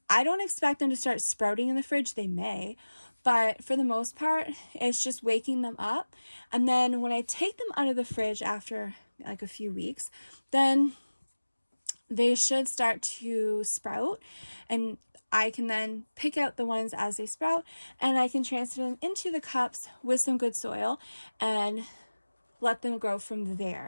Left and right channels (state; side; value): inverted; both; correlation -1.00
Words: I don't expect them to start sprouting in the fridge. They may, but for the most part, it's just waking them up. And then when I take them out of the fridge after like a few weeks, then they should start to sprout, and I can then pick out the ones as they sprout, and I can transfer them into the cups with some good soil and let them grow from